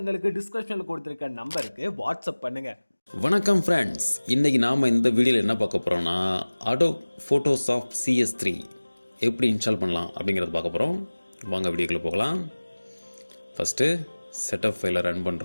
டிஸ்கிரிப்ஷன்ல கொடுத்திருக்க நம்பருக்கு வாட்ஸ்அப் பண்ணுங்க. வணக்கம் ஃப்ரெண்ட்ஸ், இன்றைக்கி நாம் இந்த வீடியோவில் என்ன பார்க்க போகிறோம்னா அடோப் ஃபோட்டோஷாப் CS3 எப்படி இன்ஸ்டால் பண்ணலாம் அப்படிங்கிறத பார்க்க போகிறோம். வாங்க வீடியோக்குள்ளே போகலாம். ஃபஸ்ட்டு செட்டப் ஃபைலை ரன்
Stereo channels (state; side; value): inverted; both; correlation -1.00